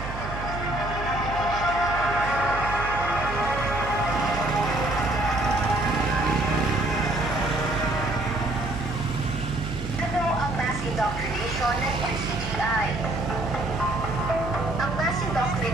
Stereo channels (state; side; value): noise; right; hum, 8 dB below the sound